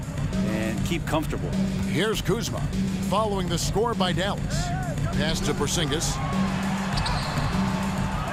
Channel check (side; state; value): both; identical; correlation 1.00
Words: and keep comfortable. Here's Kuzma following the score by Dallas. Pass to Porzingis.